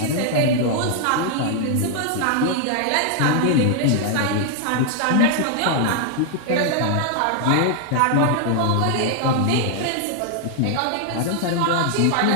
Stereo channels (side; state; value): both; different; correlation 0.00